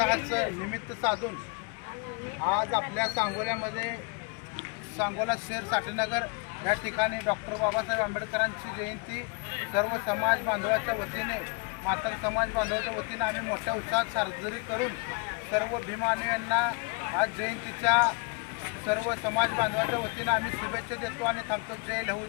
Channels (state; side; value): quieter; right; 32.7 dB